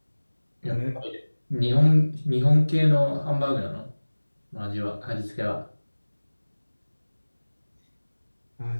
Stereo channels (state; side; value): inverted; both; correlation -1.00